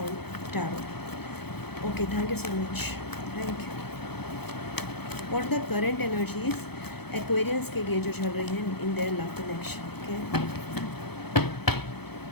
tarot. Okay, thank you so much, thank you. What the current energies Aquarians के लिए जो चल रही हैं in their love connection. Okay,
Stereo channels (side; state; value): right; late; 0.97 ms